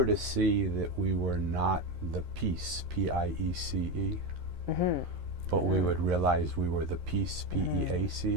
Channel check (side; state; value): left; late; 11 ms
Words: to see that we were not the peace, P-I-E-C-E, but we would realize we were the peace,